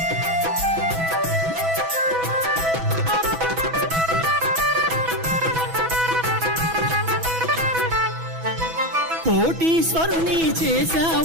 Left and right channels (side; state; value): left; late; 6.1 ms